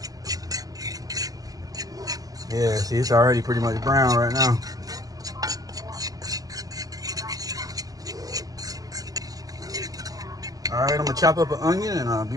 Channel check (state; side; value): late; left; 0.18 ms